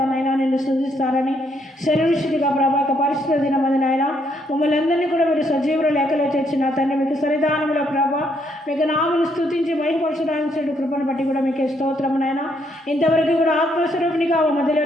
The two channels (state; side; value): normal; both; correlation 0.72